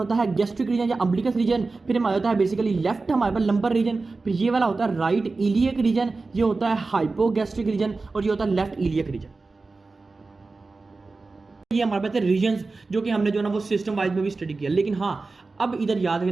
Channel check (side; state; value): left; quieter; 3.8 dB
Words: है गैस्ट्रिक रीजन या अम्बिलिकस रीजन। फिर हमारे होता है बेसिकली लेफ्ट हमारे पास लंबर रीजन। फिर ये वाला होता है राइट इलियक रीजन, ये होता है हाइपोगैस्ट्रिक रीजन, और ये होता है लेफ्ट इलियक रीजन। ये हमारे पास रीजन्स जो कि हमने जो ना वो सिस्टम वाइज में भी स्टडी किया। लेकिन हाँ, अब इधर याद